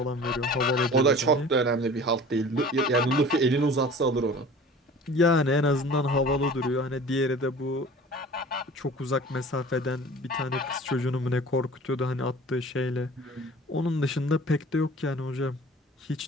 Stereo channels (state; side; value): normal; both; correlation 0.43